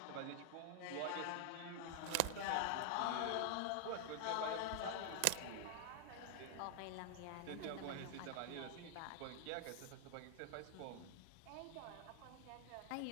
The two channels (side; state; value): both; different; correlation 0.00